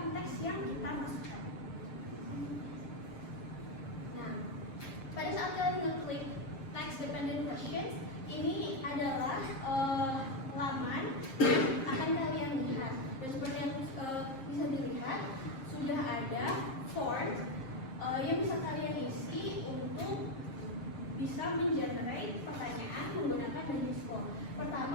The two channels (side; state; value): right; late; 7.5 ms